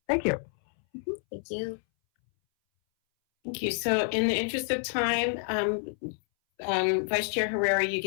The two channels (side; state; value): right; silent; 59 dB below the other